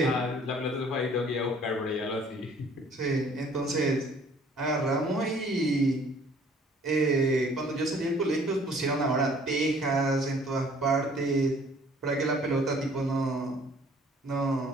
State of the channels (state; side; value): normal; both; correlation 0.56